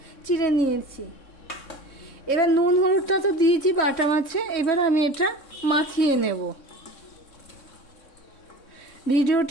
চিড়ে নিয়েছি। এবার নুন হলুদটা তো দিয়েছি বাটা মাছে, এবার আমি এটা মাখিয়ে নেব।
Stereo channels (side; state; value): right; late; 3.6 ms